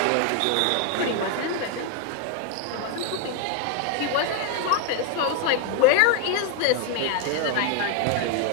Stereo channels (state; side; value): different; both; correlation 0.01